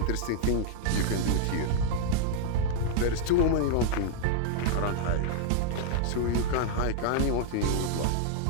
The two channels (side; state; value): both; different; correlation -0.01